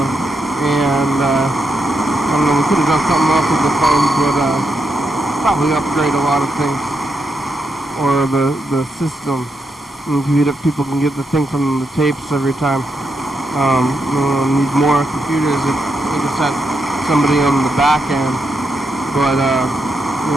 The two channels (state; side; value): normal; both; correlation 0.83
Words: and I don't know, we could have done something else with the phones, but probably upgrade a lot of things, or the system. And people can get the thing from the tapes every time. Need more computers if we just had somebody on the back end, but